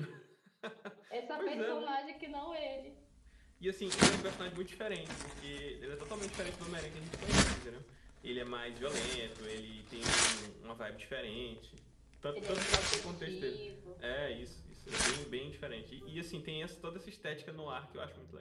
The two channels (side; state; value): both; identical; correlation 1.00